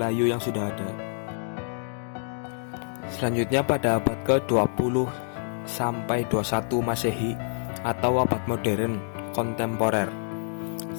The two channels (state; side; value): silent; right; digital silence